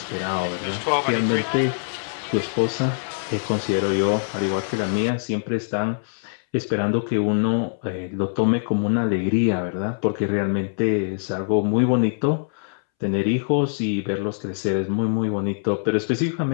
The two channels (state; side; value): silent; right; 63 dB below the other